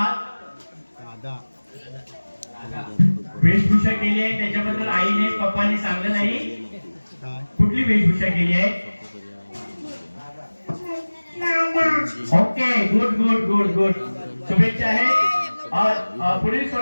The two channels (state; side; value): inverted; both; correlation -1.00